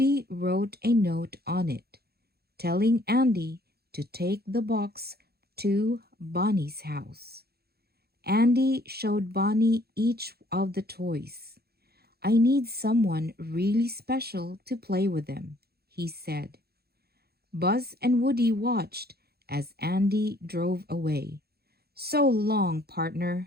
wrote a note on it, telling Andy to take the box to Bonnie's house. Andy showed Bonnie each of the toys. "I need someone really special to play with them," he said. Buzz and Woody watched as Andy drove away. "So long,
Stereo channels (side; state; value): left; late; 0.46 ms